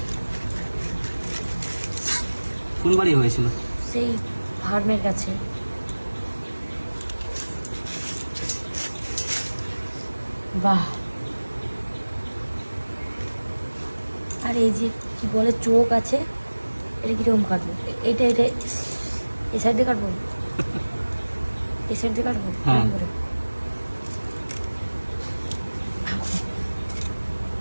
কোন বাড়ি হয়েছিল? সেই ফার্মের কাছে। বাহ! আর এই যে কি বলে চোখ আছে, এটা কিরকম কাটবো? এটা এটা এই সাইড দিয়ে কাটবো, এই সাইড দিয়ে কাটবো। হ্যাঁ। এরকম করে।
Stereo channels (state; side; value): inverted; both; correlation -1.00